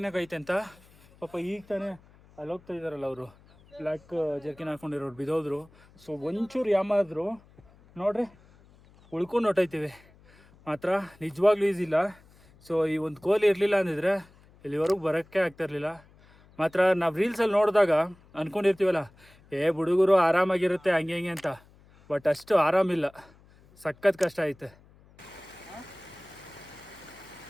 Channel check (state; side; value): noise; left; hum, 27 dB below the sound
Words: ಐತೆ ಅಂತ. ಪಾಪ ಈಗ ತಾನೇ ಅಲ್ಲಿ ಹೋಗ್ತಾ ಇದ್ದಾರಲ್ಲ ಅವರು ಬ್ಲ್ಯಾಕ್ ಜರ್ಕಿನ್ ಹಾಕ್ಕೊಂಡಿರೋರು ಬಿದ್ದೋದ್ರು. ಸೊ ಒಂಚೂರು ಯಾಮಾದ್ರು ನೋಡ್ರಿ ಉಳ್ಕೊಂಡು ಹೊಟ್ಟೈತೀವಿ. ಮಾತ್ರ ನಿಜವಾಗ್ಲೂ ಈಸಿ ಇಲ್ಲ. ಸೊ ಈ ಒಂದು ಕೋಲಿ ಇರಲಿಲ್ಲ ಅಂದಿದ್ರೆ ಇಲ್ಲಿವರೆಗೂ ಬರೋಕ್ಕೆ ಆಗ್ತಾಯಿರಲಿಲ್ಲ. ಮಾತ್ರ ನಾವು ರೀಲ್ಸಲ್ಲಿ ನೋಡಿದಾಗ ಅಂದ್ಕೊಂಡಿರ್ತೀವಲ್ಲ ಹುಡುಗರು ಆರಾಮಾಗಿರುತ್ತೆ ಹಂಗೆ ಹಿಂಗೆ ಅಂತ. ಬಟ್ ಅಷ್ಟು ಆರಾಮಿಲ್ಲ, ಸಖತ್ ಕಷ್ಟ ಐತೆ.